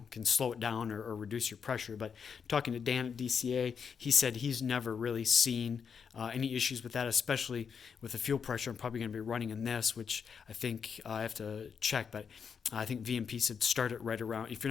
can slow it down or reduce your pressure. But talking to Dan at DCA, he said he's never really seen any issues with that, especially with the fuel pressure. I'm probably going to be running in this, which I think I have to check, but I think VMP said start it right around, if you're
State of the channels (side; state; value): right; quieter; 6.6 dB